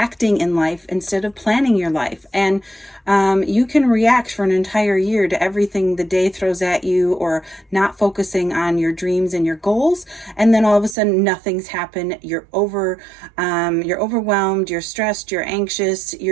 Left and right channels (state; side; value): drops out; left; at 11.0 s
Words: in life instead of planning your life. And you can react for an entire year to everything the day throws at you, or not focusing on your dreams and your goals, and then all of a sudden nothing's happened. You're overwhelmed, you're stressed, you're anxious,